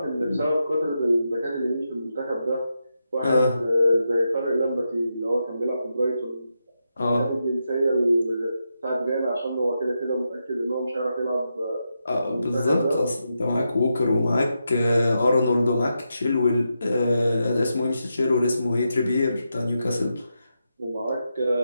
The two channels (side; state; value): both; inverted; correlation -0.86